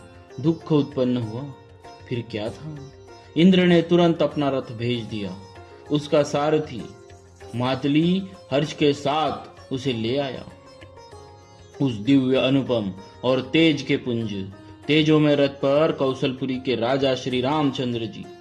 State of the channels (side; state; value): both; identical; correlation 1.00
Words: दुख उत्पन्न हुआ। फिर क्या था, इंद्र ने तुरंत अपना रथ भेज दिया। उसका सारथी मातली हर्ष के साथ उसे ले आया। उस दिव्य अनुपम और तेज के पुंज तेजों में रथ पर कौशलपुरी के राजा श्री रामचंद्र जी